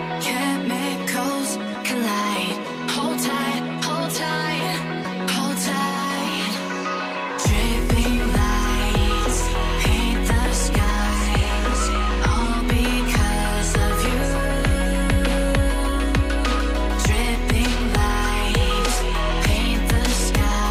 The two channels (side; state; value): both; identical; correlation 1.00